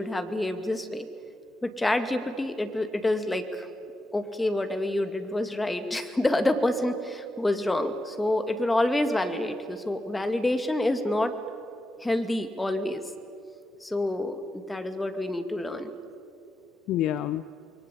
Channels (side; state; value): both; normal; correlation 0.87